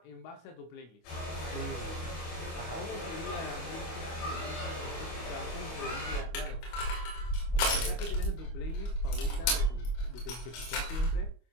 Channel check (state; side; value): late; right; 25 ms